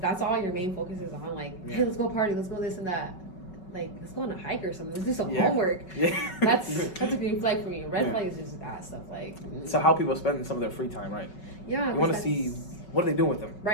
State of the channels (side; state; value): right; late; 5.3 ms